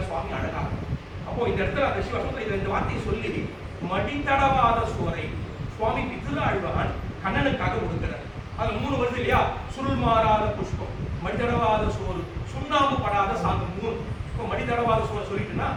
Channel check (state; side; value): identical; both; correlation 1.00